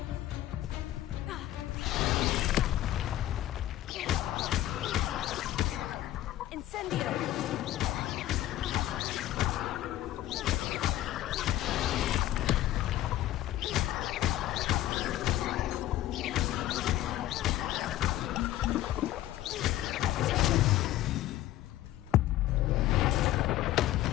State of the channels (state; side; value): quieter; right; 14.2 dB